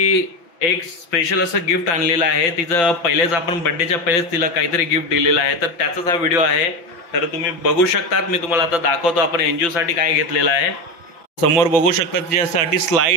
एक स्पेशल असं गिफ्ट आणलेलं आहे. तिचं पहिलेच आपण बर्थडेच्या पहिलेच तिला काहीतरी गिफ्ट दिलेलं आहे, तर त्याचाच हा व्हिडिओ आहे. तर तुम्ही बघू शकतात, मी तुम्हाला आता दाखवतो आपण एनजीओसाठी काय घेतलेलं आहे. समोर बघू शकता तिच्यासाठी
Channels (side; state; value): right; late; 5.9 ms